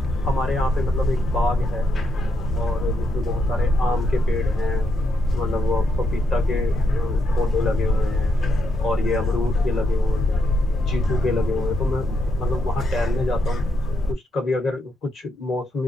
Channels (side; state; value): both; normal; correlation 0.80